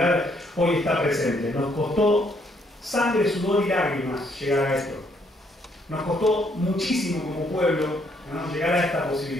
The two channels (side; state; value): both; normal; correlation 0.70